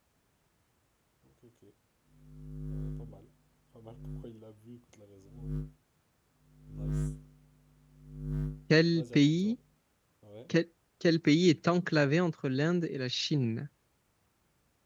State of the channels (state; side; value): identical; both; correlation 1.00